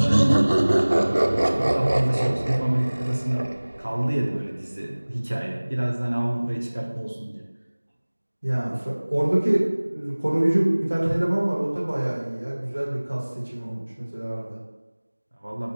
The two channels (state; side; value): inverted; both; correlation -1.00